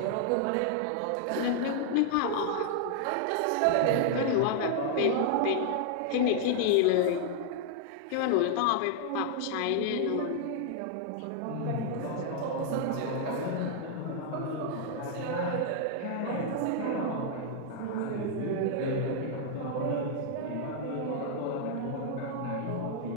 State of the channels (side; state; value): both; different; correlation -0.01